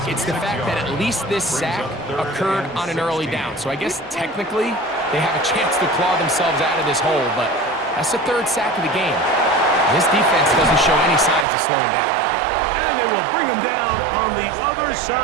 it's the fact that at least this sack occurred on an early down. So I guess technically they have a chance to claw themselves out of this hole, but that's the third sack of the game. This defense doesn't show any signs of slowing down. And they will bring him down on the other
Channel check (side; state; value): left; drops out; at 11.5 s